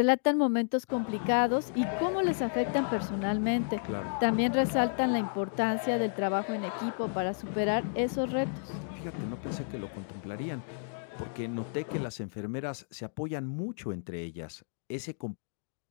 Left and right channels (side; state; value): right; silent; digital silence